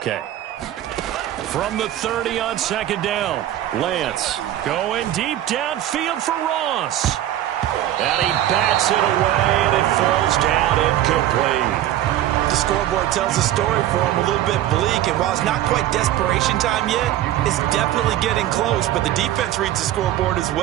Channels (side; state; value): left; quieter; 12.8 dB